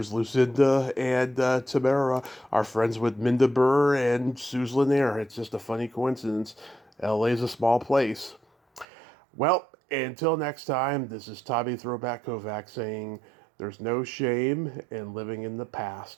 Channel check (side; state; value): left; drops out; at 8.8 s